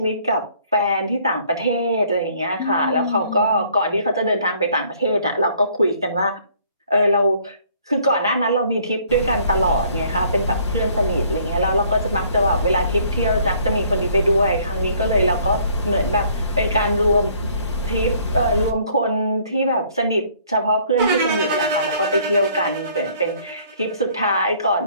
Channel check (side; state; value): both; inverted; correlation -0.60